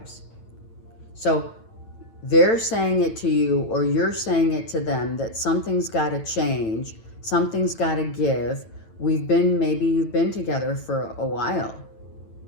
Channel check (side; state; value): right; late; 9.0 ms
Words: So they're saying it to you, or you're saying it to them, that something's got to change, something's got to give. Maybe you've been together for a while.